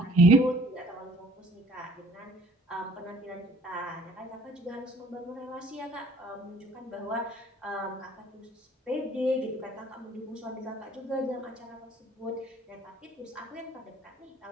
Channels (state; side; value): normal; both; correlation 0.55